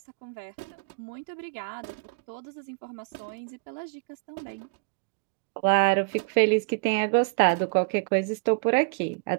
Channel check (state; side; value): quieter; left; 32.8 dB